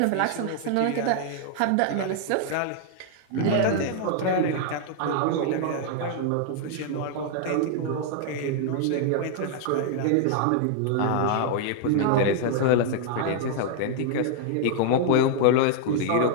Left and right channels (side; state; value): both; different; correlation 0.00